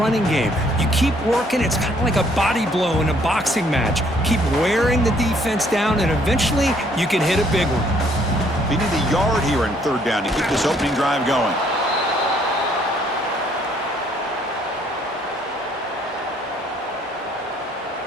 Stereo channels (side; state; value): both; normal; correlation 0.65